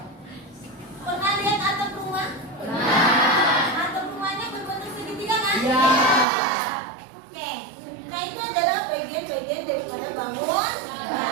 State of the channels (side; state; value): left; drops out; at 6.2 s